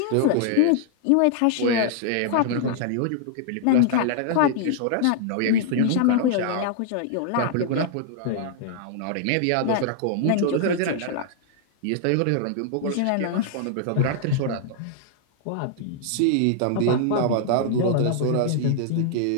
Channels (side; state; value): both; different; correlation -0.01